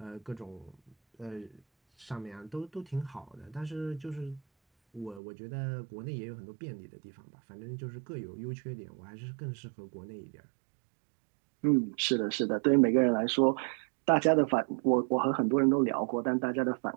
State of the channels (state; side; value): drops out; left; at 5.2 s